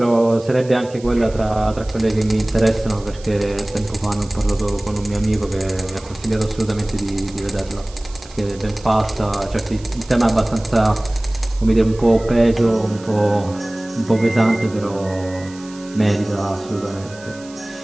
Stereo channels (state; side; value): noise; right; hiss, 21 dB below the sound